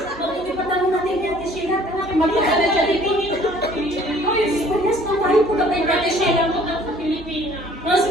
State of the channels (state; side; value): normal; both; correlation 0.55